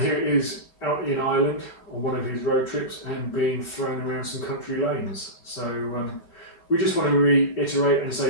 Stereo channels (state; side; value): late; right; 5.3 ms